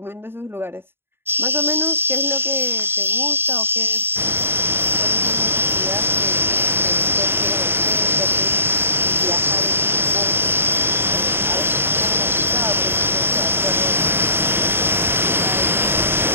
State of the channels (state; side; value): late; left; 0.11 ms